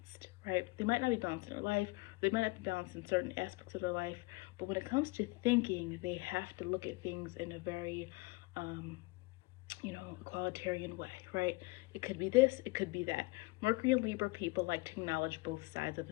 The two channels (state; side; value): quieter; right; 24.6 dB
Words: right? They might not be balanced in their life, they might not be balanced in certain aspects of their life, but when it comes to thinking, they have to look at things in a very, egalitarian way, right? It could be this, it could be that. Mercury and Libra people like to acknowledge both sides of